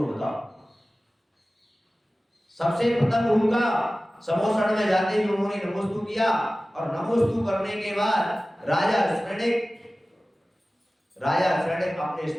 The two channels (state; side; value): normal; both; correlation 0.97